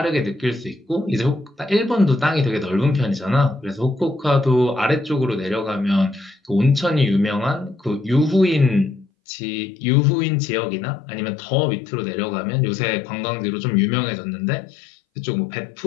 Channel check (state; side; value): drops out; right; at 9.1 s